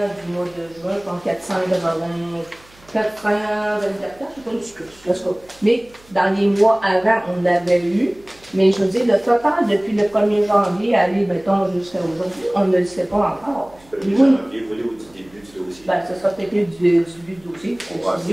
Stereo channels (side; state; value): right; noise; hum, 27 dB below the sound